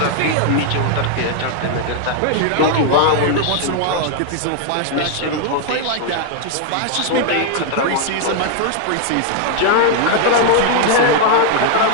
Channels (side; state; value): both; different; correlation 0.00